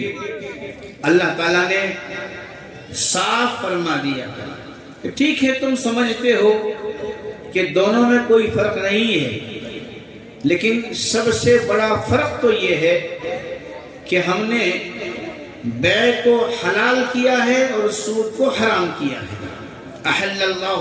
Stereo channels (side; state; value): both; identical; correlation 1.00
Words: اللہ تعالیٰ نے صاف فرما دیا کہ ٹھیک ہے، تم سمجھتے ہو کہ دونوں میں کوئی فرق نہیں ہے، لیکن سب سے بڑا فرق تو یہ ہے کہ ہم نے بیع کو حلال کیا ہے اور سود کو حرام کیا ہے۔ احل اللہ